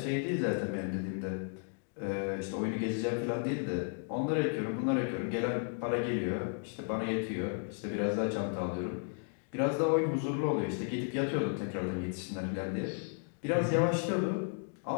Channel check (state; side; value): silent; right; 55 dB below the other